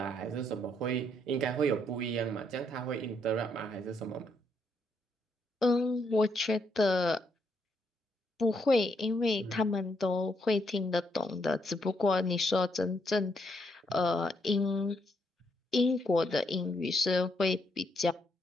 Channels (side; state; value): both; normal; correlation 0.75